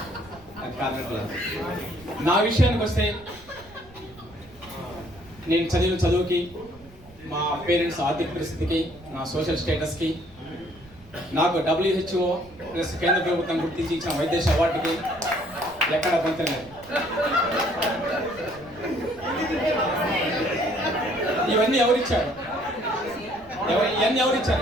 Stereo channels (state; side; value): noise; right; rumble, 23 dB below the sound